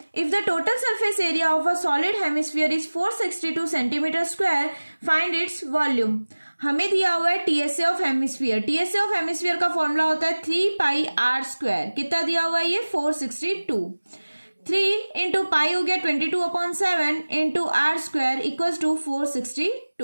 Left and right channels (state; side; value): inverted; both; correlation -1.00